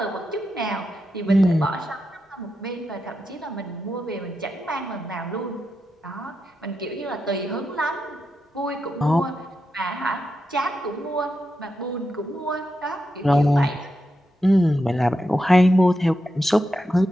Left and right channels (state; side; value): normal; both; correlation 0.87